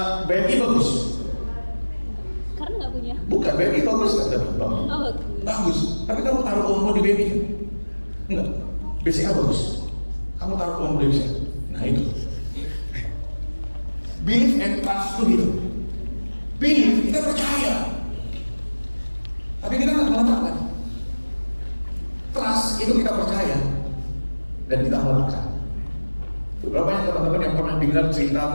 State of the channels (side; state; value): both; inverted; correlation -1.00